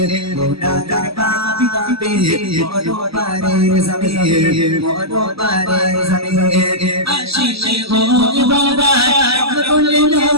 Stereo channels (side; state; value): left; late; 0.76 ms